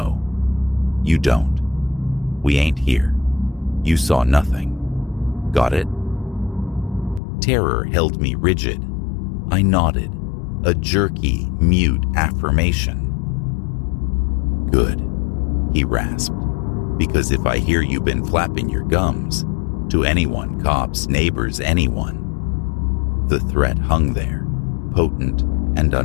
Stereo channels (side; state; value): right; drops out; at 7.2 s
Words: you don't. We ain't here. You saw nothing. Got it?" Terror held me rigid. I nodded, a jerky, mute affirmation. "Good," he rasped, "because if I hear you been flapping your gums, to anyone, cops, neighbors, anyone." The threat hung there, potent and